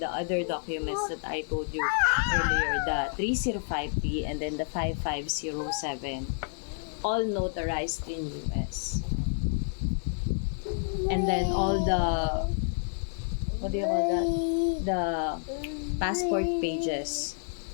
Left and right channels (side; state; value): right; silent; 58 dB below the other